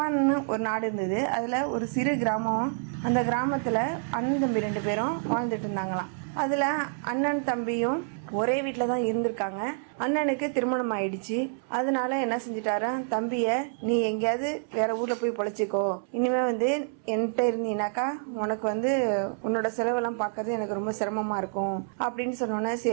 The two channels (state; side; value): silent; left; 59 dB below the other